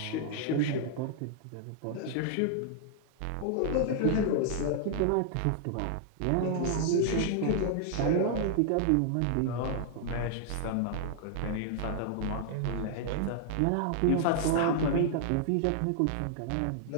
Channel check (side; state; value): both; different; correlation -0.01